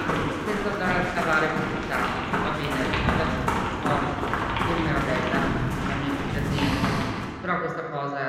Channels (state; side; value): identical; both; correlation 1.00